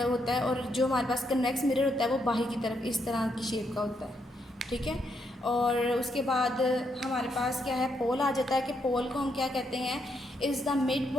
होता है, और जो हमारे पास कन्वेक्स मिरर होता है वो बाहर की तरफ इस तरह की शेप का होता है। ठीक है, और उसके बाद हमारे पास क्या है? पोल आ जाता है कि पोल को हम क्या कहते हैं? Is the mid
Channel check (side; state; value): both; normal; correlation 0.77